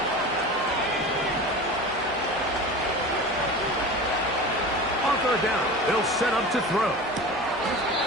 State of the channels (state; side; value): normal; both; correlation 0.33